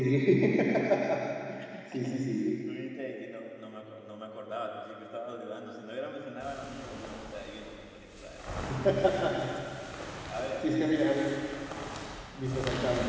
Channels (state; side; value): identical; both; correlation 1.00